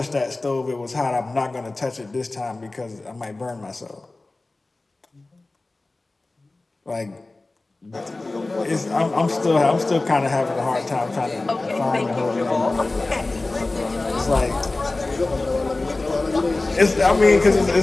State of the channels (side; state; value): right; quieter; 3.1 dB